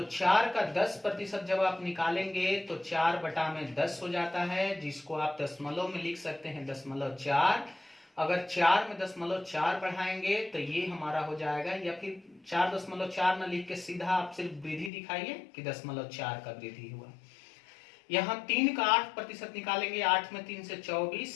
4 का 10% जब आप निकालेंगे तो 4/10 हो जाता है, जिसको आप दशमलव में लिख सकते हैं 0.4। अगर 4 में 0.4 बढ़ाएंगे तो ये हमारा हो जाएगा, या फिर 4.4 न लिख के सीधा आप सिर्फ वृद्धि दिखाइए कि 0.4 का वृद्धि हुआ। यहाँ 3 का 8% निकालेंगे, 8 में 3 से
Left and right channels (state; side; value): drops out; right; at 14.9 s